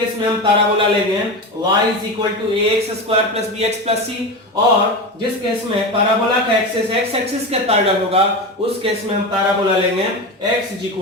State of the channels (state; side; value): normal; both; correlation 0.22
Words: में हम पैराबोला लेंगे y is equal to ax square plus bx plus c, और जिस केस में पैराबोला का एक्सिस x एक्सिस के पैरेलल होगा उस केस में हम पैराबोला लेंगे x is